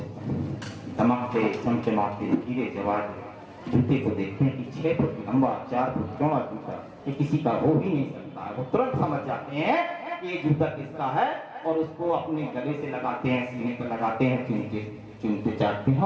चमकते चमचमाते हीरे जवाहर जूते को देखते हैं कि 6 फुट लंबा 4 फुट चौड़ा जूता ये किसी का हो ही नहीं सकता। वो तुरंत समझ जाते हैं कि ये जूता किसका है और उसको अपने गले से लगाते हैं, सीने पर लगाते हैं, चुनते चाटते हैं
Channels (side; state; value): both; identical; correlation 1.00